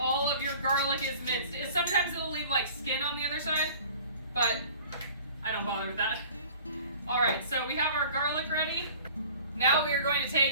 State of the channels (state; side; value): inverted; both; correlation -0.46